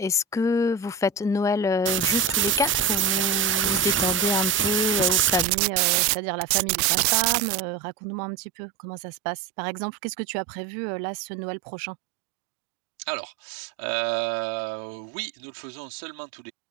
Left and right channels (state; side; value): drops out; left; at 5.5 s